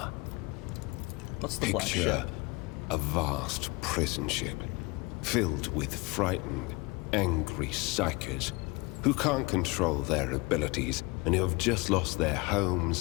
What's the Black Picture Ship? a vast prison ship filled with frightened, angry psychers who can't control their abilities and who have just lost their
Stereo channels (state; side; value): quieter; right; 25.7 dB